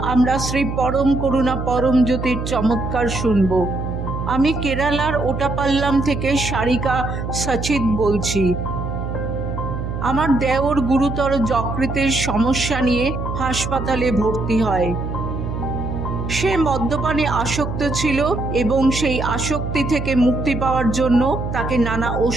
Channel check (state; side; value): noise; right; hum, 5 dB below the sound